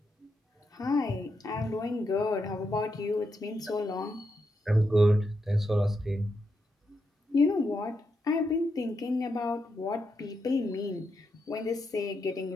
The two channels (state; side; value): normal; both; correlation 0.83